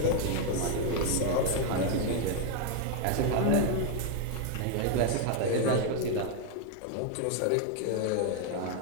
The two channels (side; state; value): both; different; correlation 0.01